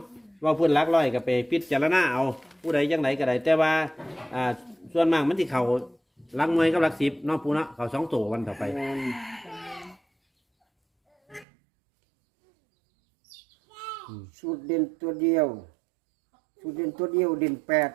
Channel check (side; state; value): left; drops out; at 11.5 s